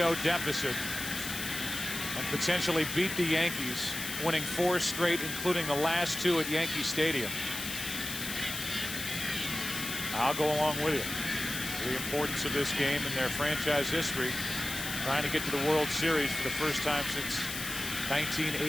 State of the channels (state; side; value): noise; left; hiss, 6 dB below the sound